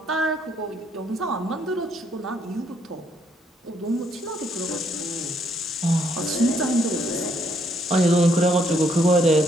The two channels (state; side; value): normal; both; correlation 0.70